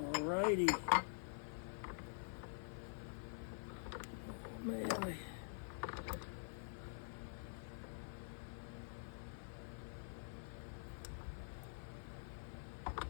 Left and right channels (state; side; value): silent; right; digital silence